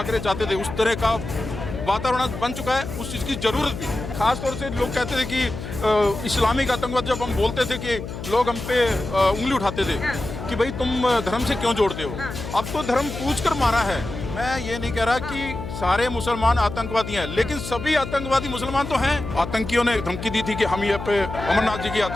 चाहते थे, उस तरह का वातावरण बन चुका है, उस चीज़ की ज़रूरत भी। खास तौर से लोग कहते थे कि इस्लामिक आतंकवाद, जब हम बोलते थे कि लोग हम पे उंगली उठाते थे कि भाई तुम धर्म से क्यों जोड़ते हो। अब तो धर्म पूछ कर मारा है। मैं ये नहीं कह रहा कि सारे मुसलमान आतंकवादी हैं, लेकिन सभी आतंकवादी मुसलमान तो हैं। आतंकियों ने धमकी दी थी कि हम यहाँ पे अमरनाथ जी की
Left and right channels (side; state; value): left; noise; hum, 8 dB below the sound